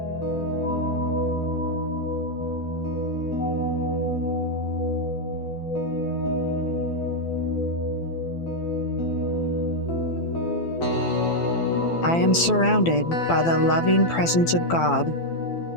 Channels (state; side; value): late; right; 12 ms